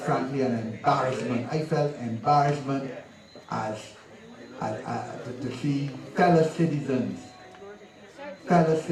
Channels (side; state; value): both; identical; correlation 1.00